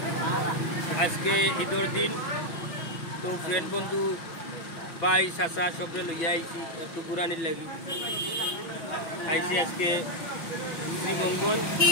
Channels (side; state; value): right; late; 5.6 ms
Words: আজকে ঈদের দিন, তো ফ্রেন্ড বন্ধু ভাই চাচা সবরে লইয়া আইছি একটু বুড়ানির লাগি আইছি। আজকে শ্রীমঙ্গল